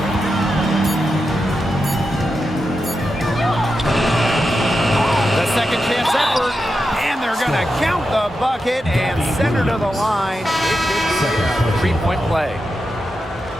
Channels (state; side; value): normal; both; correlation 0.88